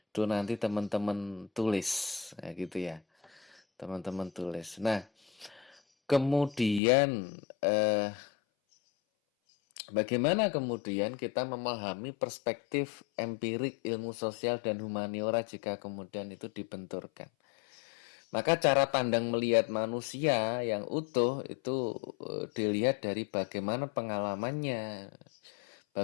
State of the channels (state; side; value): drops out; right; at 6.8 s